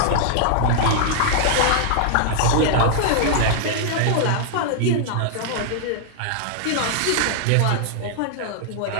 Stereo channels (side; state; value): both; different; correlation -0.01